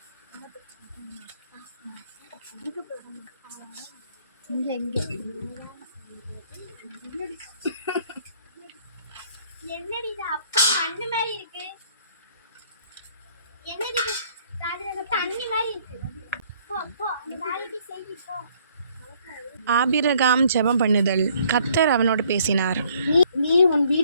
என்னடி இது அப்பா அண்ணு மாதிரி இருக்கு? என்னடி தண்ணி மாதிரி இருக்கு? ஆபிரகாம் ஜெபம் பண்ணுதல். கர்த்தர் அவனோடு பேசினார். நீ உன்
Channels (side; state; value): both; inverted; correlation -0.62